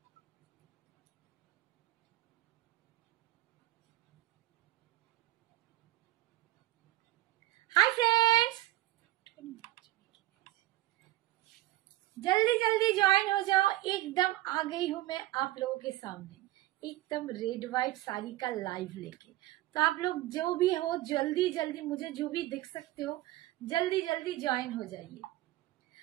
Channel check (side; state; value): left; quieter; 16.6 dB